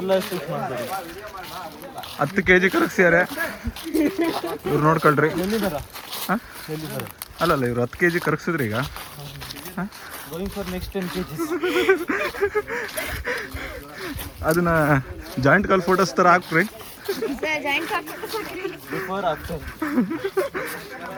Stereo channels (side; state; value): both; identical; correlation 1.00